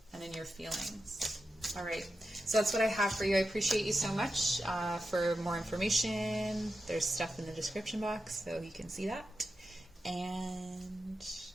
and in your feelings. All right, so that's what I have for you. I appreciate you so much. For more information, there's stuff in the description box, so you can see that. And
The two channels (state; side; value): normal; both; correlation 0.90